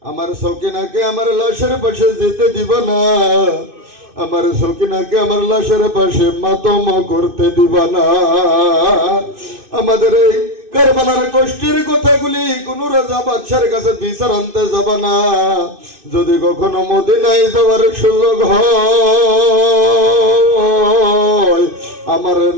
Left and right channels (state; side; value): late; left; 2.5 ms